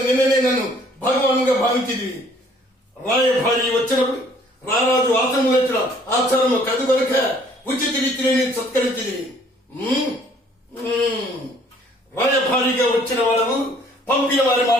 నిన్ననే నన్ను భగవానుగా భావించింది. రాయభారి వచ్చినప్పుడు రారాజు ఆశ్రమం వచ్చిన ఆచారము కదుగొనక ఉచిత రీతిని నేను సత్కరించింది. రాయభారిగా వచ్చిన వాడు పంపిన వారి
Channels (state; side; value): normal; both; correlation 0.59